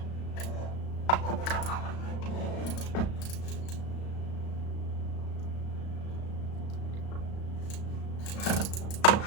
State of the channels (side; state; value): right; late; 35 ms